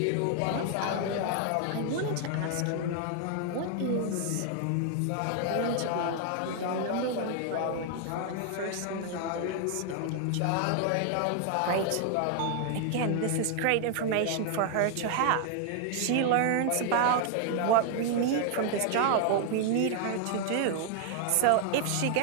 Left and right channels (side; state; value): both; different; correlation 0.00